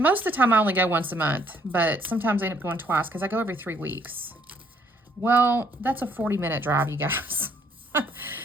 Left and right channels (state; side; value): normal; both; correlation 0.66